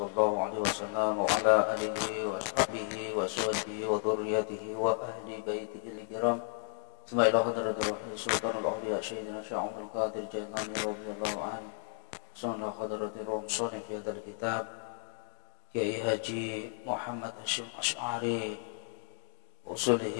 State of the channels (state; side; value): silent; right; digital silence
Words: alaihi wasallam wa ala alihi wa ashabihi wa sahbihi wa dzurriyyatihi wa ahli baitihi al-kiram. Suma ila hadratil wahyi sultanul awliya sayyidina Syekh Abdul Qadir Jailani radhiyallahu anhu. Suma hadratir ruh salih fi hadzal kitab Kiai Haji Muhammad Hasyim Asy'ari